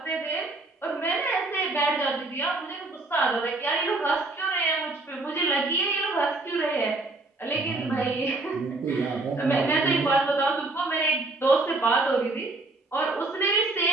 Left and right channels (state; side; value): quieter; left; 3.1 dB